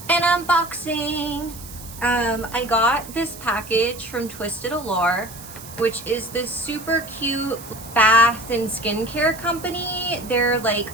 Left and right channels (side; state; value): right; noise; hiss, 15 dB below the sound